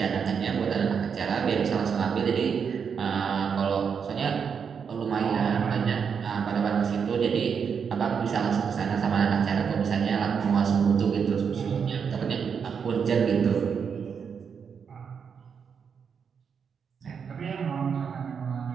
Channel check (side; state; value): left; quieter; 6.6 dB